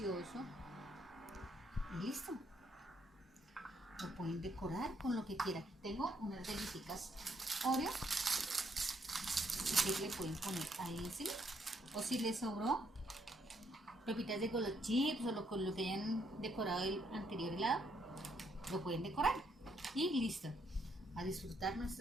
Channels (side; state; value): both; normal; correlation 0.72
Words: Y listo. Lo pueden decorar con lo que quieran. Tengo unas galletitas Oreo. Así que le pueden poner ahí encima. O si les sobró pepitas de Golo Chips o con lo que hayan decorado el anterior helado, lo pueden decorar. Y listo. A disfrutar